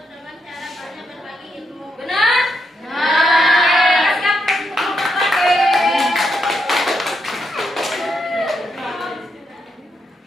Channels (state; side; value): normal; both; correlation 0.80